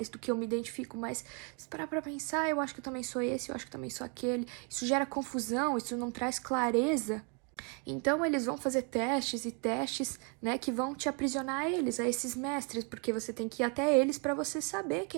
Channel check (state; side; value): quieter; left; 36.5 dB